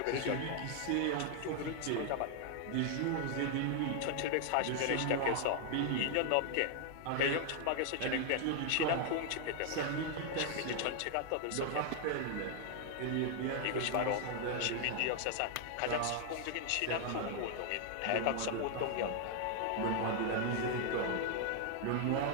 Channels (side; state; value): both; different; correlation 0.00